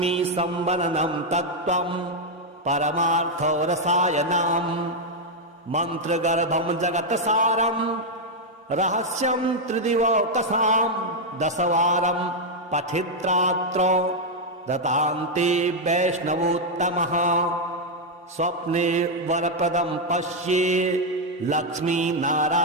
तत्त्वं परमार्थरसायनम् मन्त्रगर्भं जगत्सारं रहस्यं त्रिदिवकसां दशवारं पठित्रात्र दतान्ते वैष्णवोत्तमः स्वप्ने वरप्रदं पश्ये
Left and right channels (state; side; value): normal; both; correlation 0.00